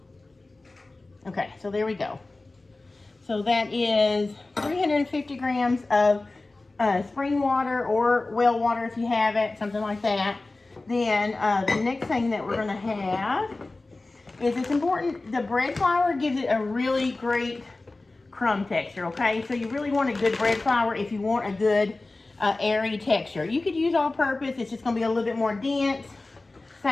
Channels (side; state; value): right; quieter; 3.2 dB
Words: Okay, so there we go. So that is 350 grams of spring water or well water if you have it, something like that. Then the next thing that we're going to have is, it's important, the bread flour gives it a really great crumb texture, okay? So you really want a good bread flour if you want a good airy texture. You could use all-purpose. It's just going to be a little bit more dense.